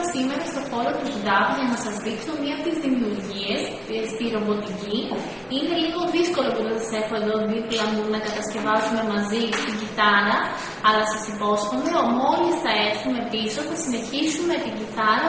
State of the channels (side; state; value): both; identical; correlation 1.00